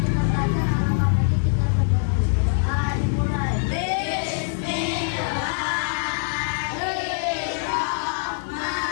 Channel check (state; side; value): silent; right; digital silence